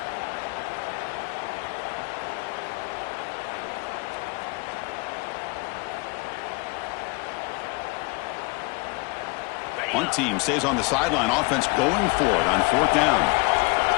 Punt team stays on the sideline. Offense going for it on 4th down.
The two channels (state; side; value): quieter; right; 27.7 dB